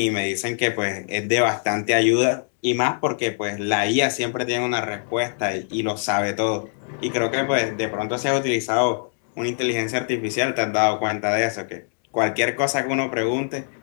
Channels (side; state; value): right; silent; digital silence